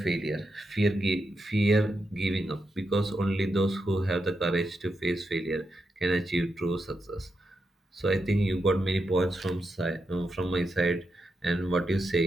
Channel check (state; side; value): normal; both; correlation 0.85